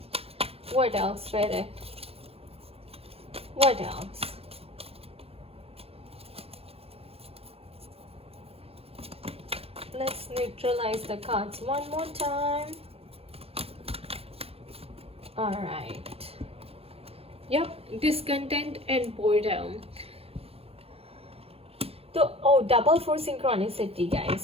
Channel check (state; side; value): late; left; 0.28 ms